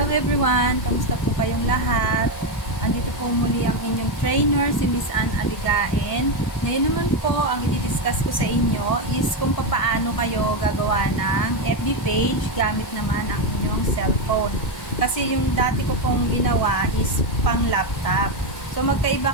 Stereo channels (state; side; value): late; right; 1.5 ms